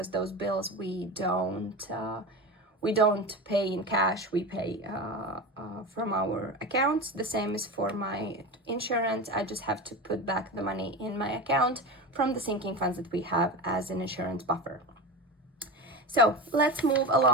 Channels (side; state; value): both; normal; correlation 0.25